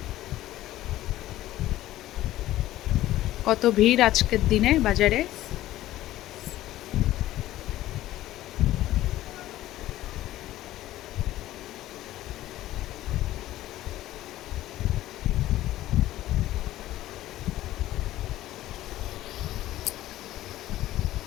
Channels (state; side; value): quieter; right; 14.9 dB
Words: কত ভিড় আজকের দিনে বাজারে।